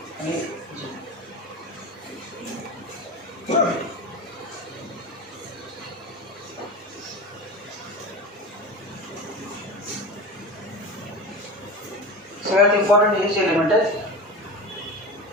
आणि सगळ्यात इम्पॉर्टंट हेच एलिमेंट आहेत.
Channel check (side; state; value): both; normal; correlation 0.28